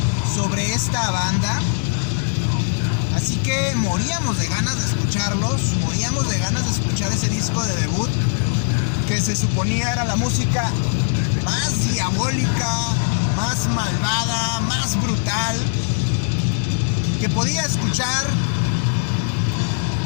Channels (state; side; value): silent; right; digital silence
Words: sobre esta banda, así que moríamos de ganas de escucharlos, moríamos de ganas de escuchar ese disco de debut, que se suponía era la música más diabólica, más malvada, más brutal que podía escuchar